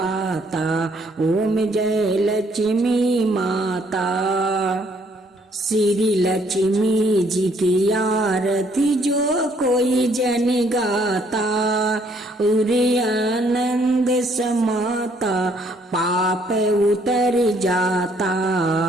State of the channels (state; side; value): normal; both; correlation 0.66